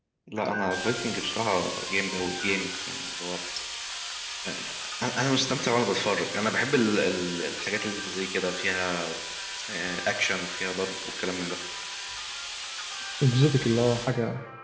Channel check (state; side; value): identical; both; correlation 1.00